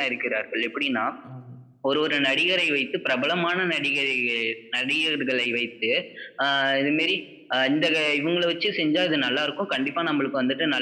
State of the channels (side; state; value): both; identical; correlation 1.00